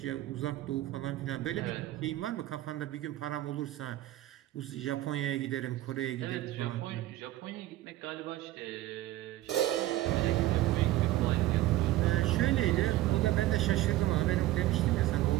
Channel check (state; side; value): quieter; left; 15.5 dB